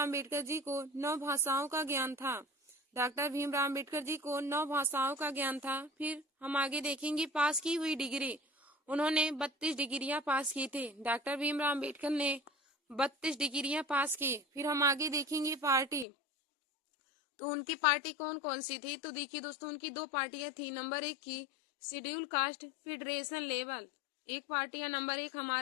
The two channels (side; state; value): right; drops out; at 16.1 s